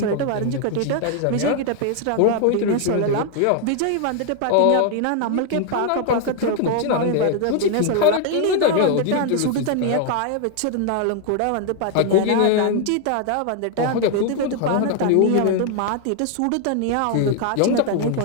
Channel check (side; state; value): both; different; correlation 0.00